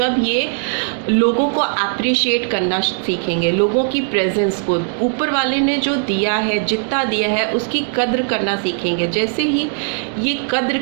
ये लोगों को अप्रिशिएट करना सीखेंगे, लोगों की प्रेजेंस को, ऊपर वाले ने जो दिया है, जितना दिया है उसकी कद्र करना सीखेंगे। जैसे ही ये कद्र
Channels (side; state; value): left; silent; 61 dB below the other